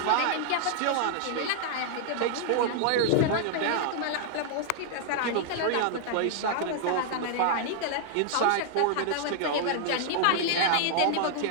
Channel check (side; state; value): both; different; correlation 0.00